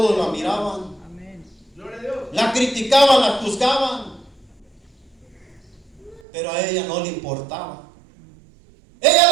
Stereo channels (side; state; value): left; drops out; at 6.2 s